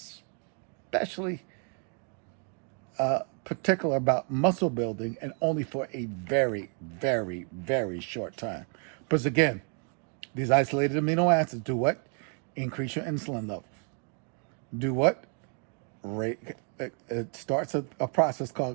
particular about muscle building, and only for a very, very, very short time. Because again, these isolated amino acids do what? Increase your insulin levels. Do what? It starts a process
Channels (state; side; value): quieter; left; 39.6 dB